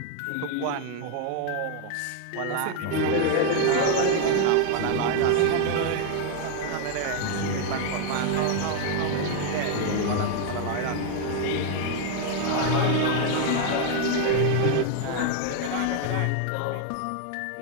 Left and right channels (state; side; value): different; both; correlation 0.01